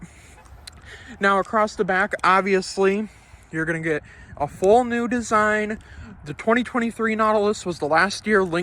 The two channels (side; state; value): both; identical; correlation 1.00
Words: Now across the back, obviously you're going to get a full new design. The 2023 Nautilus was the last year